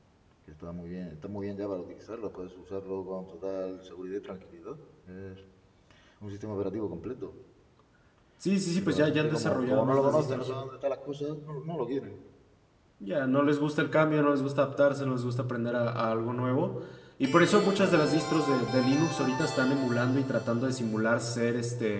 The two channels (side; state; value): both; identical; correlation 1.00